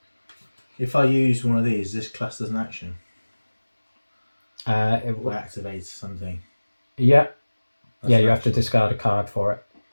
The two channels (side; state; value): both; inverted; correlation -1.00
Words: If I use one of these, this class as an action. It Or activates something. Yeah. That's Yeah, an you have to action. discard a card for it.